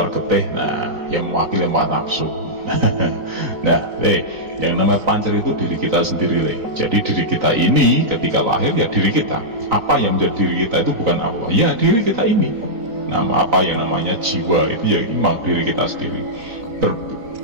getih, nah yang mewakili empat nafsu. Nah Le, yang namanya pancer itu diri kita sendiri Le. Jadi diri kita ini ketika lahir ya diri kita. Apa yang menjadi diri kita itu bukan apa, ya diri kita ini. Nama apa yang namanya jiwa itu ya memang diri kita sendiri.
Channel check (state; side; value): late; left; 3.9 ms